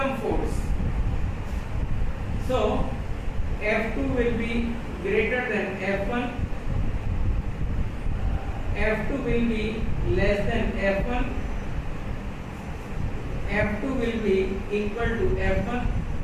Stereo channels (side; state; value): both; identical; correlation 1.00